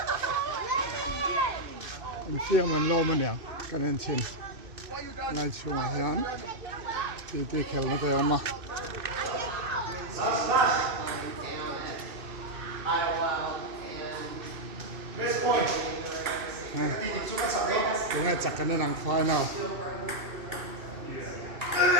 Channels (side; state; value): left; late; 2.6 ms